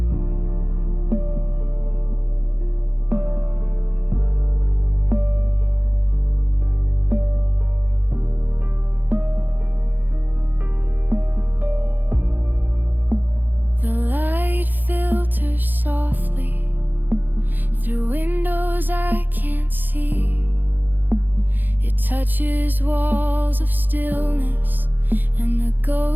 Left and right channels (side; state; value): left; late; 0.088 ms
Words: Softly through windows I can't see. It touches walls of stillness and the